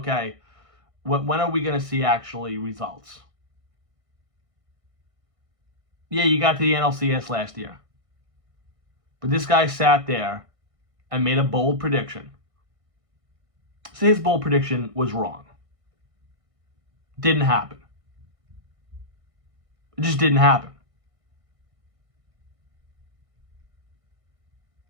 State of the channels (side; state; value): left; late; 1.6 ms